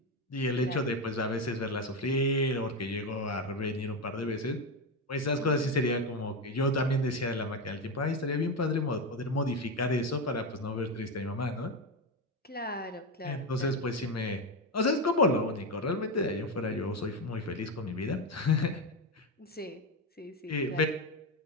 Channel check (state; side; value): normal; both; correlation 0.13